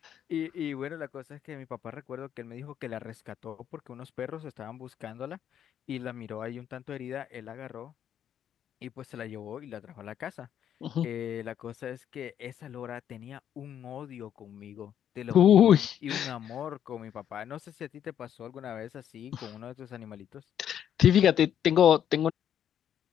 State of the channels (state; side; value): quieter; right; 9.6 dB